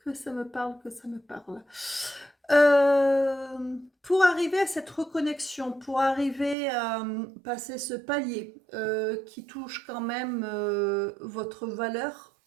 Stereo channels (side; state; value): left; drops out; at 6.6 s